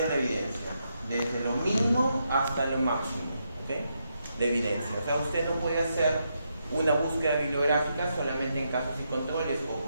la evidencia, desde lo mínimo hasta lo máximo, ¿okay?, de evidencia. O sea, usted no puede hacer una búsqueda bibliográfica solamente en casos y controles o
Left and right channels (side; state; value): both; inverted; correlation -0.81